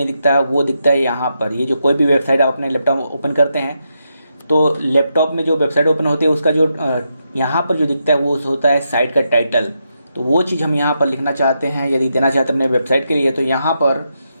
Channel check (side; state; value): both; inverted; correlation -0.83